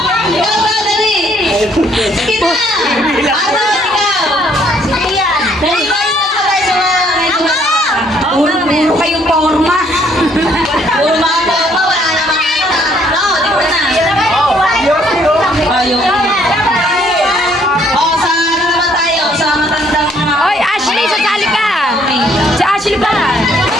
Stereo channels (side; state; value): both; normal; correlation 0.65